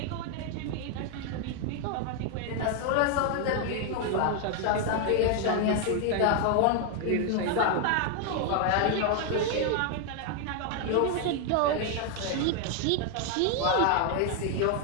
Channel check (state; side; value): different; both; correlation 0.00